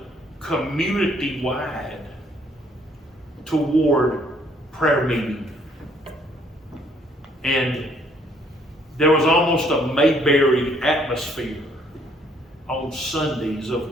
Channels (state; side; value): normal; both; correlation 0.64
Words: community-wide toward prayer meeting. And there was almost a Mayberry atmosphere on Sundays.